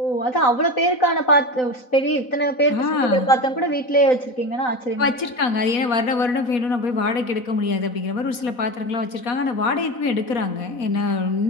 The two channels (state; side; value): late; right; 4.2 ms